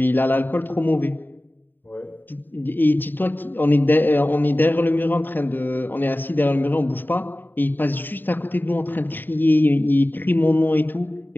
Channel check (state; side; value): late; right; 0.092 ms